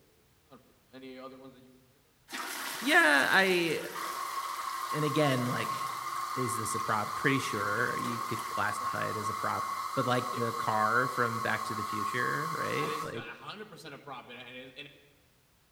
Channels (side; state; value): both; identical; correlation 1.00